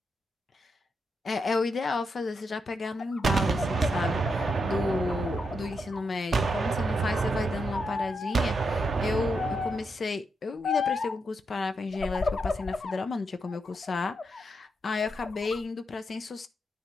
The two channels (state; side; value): normal; both; correlation 0.83